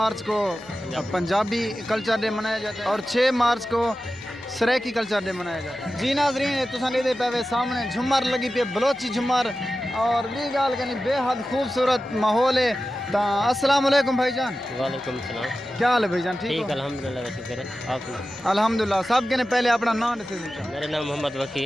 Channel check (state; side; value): noise; left; hum, 29 dB below the sound